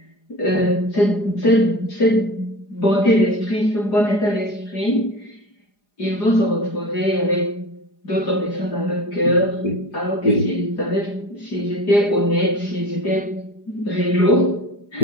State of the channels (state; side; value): late; right; 4.9 ms